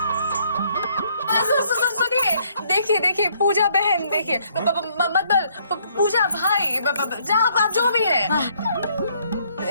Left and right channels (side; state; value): both; inverted; correlation -0.67